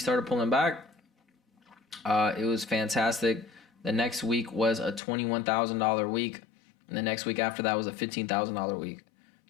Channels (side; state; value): right; drops out; at 5.0 s